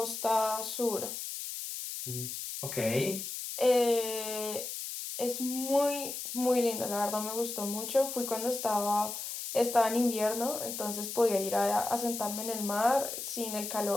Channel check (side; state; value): left; noise; hiss, 6 dB below the sound